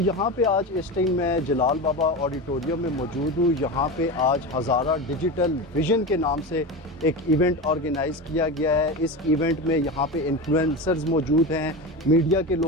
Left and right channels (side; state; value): both; normal; correlation 0.24